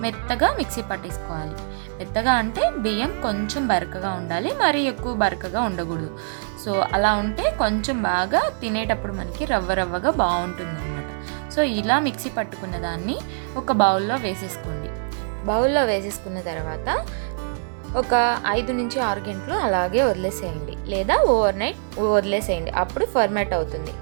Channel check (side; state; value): left; silent; digital silence